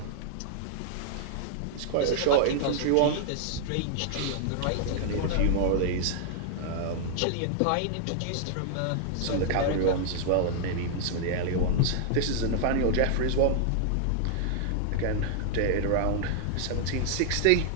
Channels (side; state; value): both; different; correlation -0.01